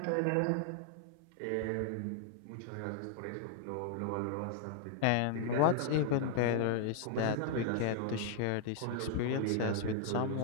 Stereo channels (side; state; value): both; different; correlation -0.01